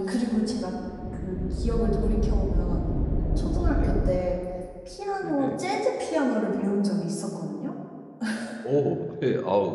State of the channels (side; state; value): both; identical; correlation 1.00